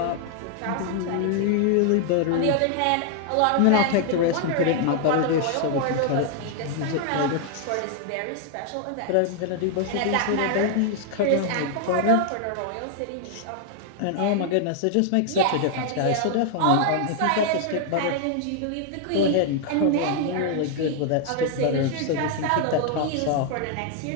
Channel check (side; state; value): both; different; correlation 0.00